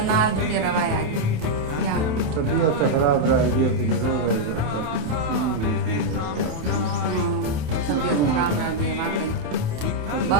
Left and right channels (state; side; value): late; left; 27 ms